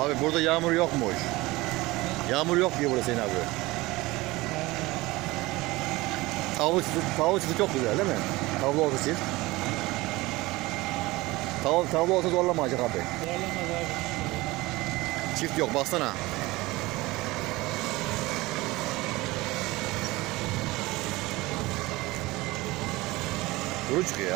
Abi burada yağmur yokmuş. Yağmur yok diyor burada Hüseyin abi. Tavla çiftliği çok güzel değil mi? Tavla olsa çift. Tavla olsa zorlamayacak abi. Zorlamaz abi. Çift yok baksana. Kuru çıkıyor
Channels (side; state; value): left; quieter; 20.5 dB